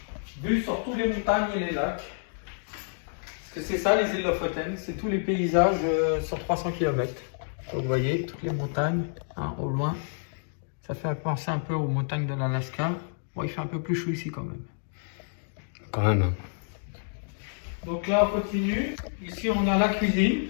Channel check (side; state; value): right; silent; digital silence